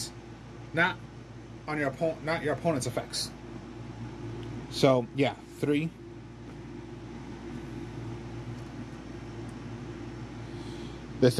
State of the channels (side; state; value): both; identical; correlation 1.00